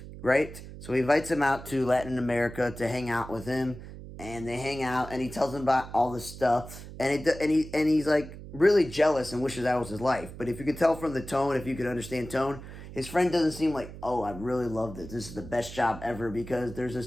right? So he invites him out to Latin America to hang out with him, and they hang out, and he tells him about all this stuff, and he's like really jealous and wishes that was his life. But if you could tell from the tone, if you could understand tone, his friend doesn't seem like, oh, I really love this. This is the best job ever, because there's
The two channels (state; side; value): noise; right; hum, 13 dB below the sound